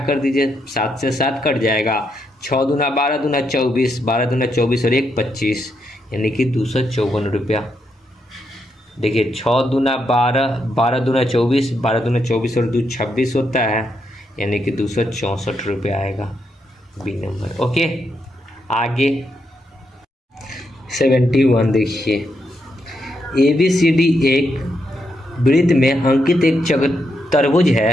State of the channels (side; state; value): both; normal; correlation 0.80